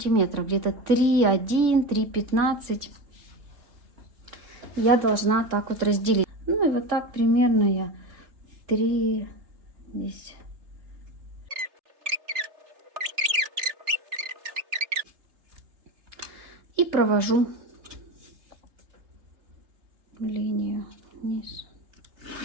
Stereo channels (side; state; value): left; late; 3.4 ms